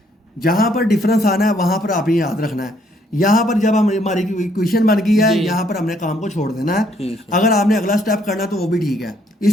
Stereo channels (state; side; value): normal; both; correlation 0.68